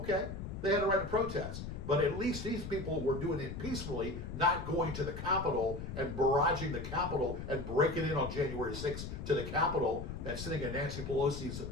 they had a right to protest. But at least these people were doing it peacefully, not going to the Capitol and barraging the Capitol and breaking in on January 6th to the Capitol and sitting at Nancy Pelosi's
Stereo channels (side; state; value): left; noise; rumble, 7 dB below the sound